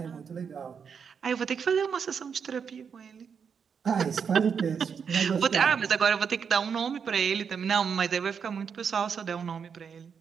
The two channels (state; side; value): quieter; left; 6.7 dB